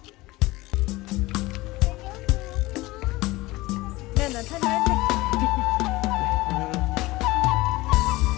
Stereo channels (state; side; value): quieter; right; 20.0 dB